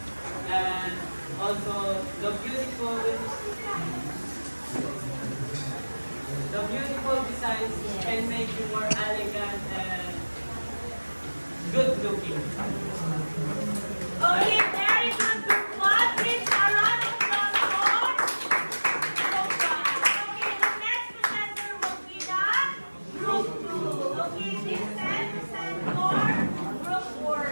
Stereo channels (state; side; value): inverted; both; correlation -1.00